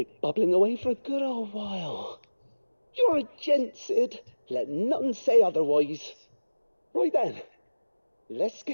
bubbling away for a good old while. You're a gent, Sid. Let nothing say otherwise. Right then, let's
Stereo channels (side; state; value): both; inverted; correlation -1.00